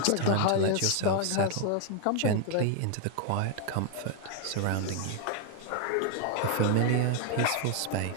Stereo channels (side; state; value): both; different; correlation 0.00